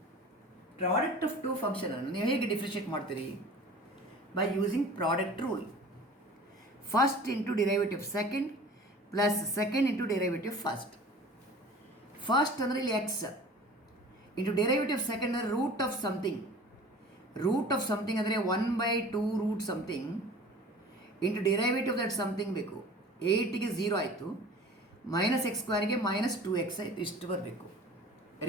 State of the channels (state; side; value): normal; both; correlation 0.43